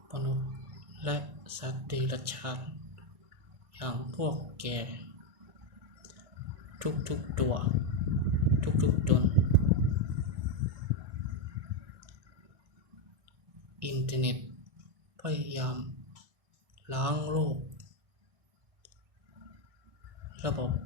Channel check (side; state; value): left; late; 1.6 ms